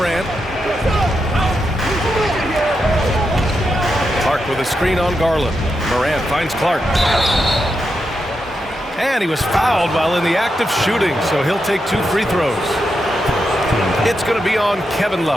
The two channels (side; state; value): both; normal; correlation 0.85